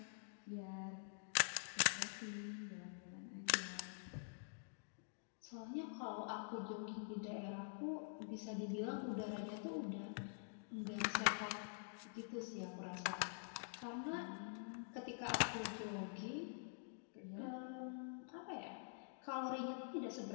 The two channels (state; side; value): silent; right; digital silence